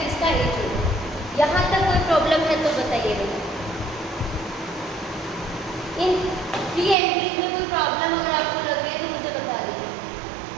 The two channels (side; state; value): left; drops out; at 7.0 s